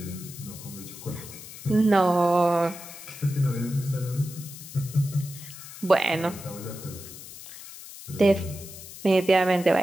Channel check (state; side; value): noise; left; hiss, 14 dB below the sound